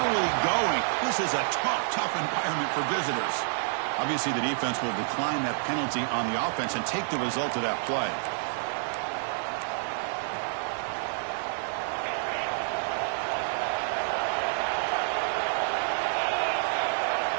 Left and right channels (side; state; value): left; silent; 59 dB below the other